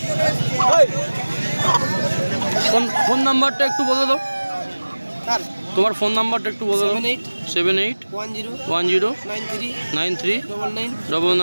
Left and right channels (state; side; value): inverted; both; correlation -1.00